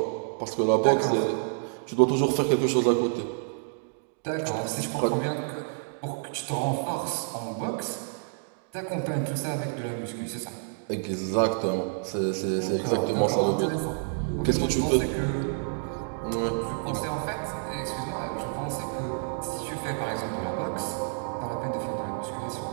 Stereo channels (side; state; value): left; silent; digital silence